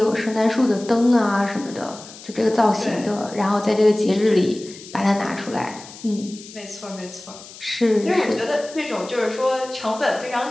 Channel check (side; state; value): left; noise; hiss, 17 dB below the sound